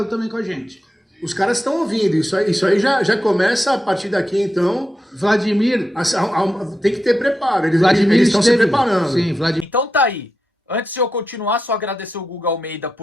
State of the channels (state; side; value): normal; both; correlation 0.87